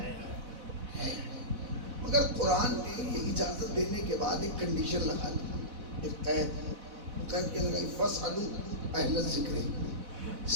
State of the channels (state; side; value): late; left; 4.0 ms